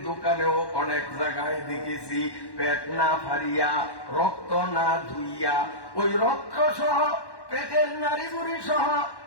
দোকানেও অনেক জায়গায় দেখেছি পেট না পারিয়া, রক্ত না ধুইয়া, ওই রক্ত সহ পেটের নারী বুড়ি সহ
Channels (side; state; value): right; late; 1.1 ms